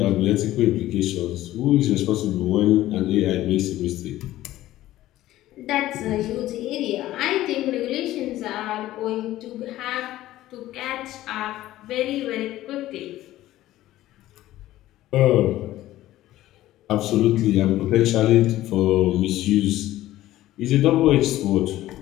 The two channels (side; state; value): right; quieter; 15.0 dB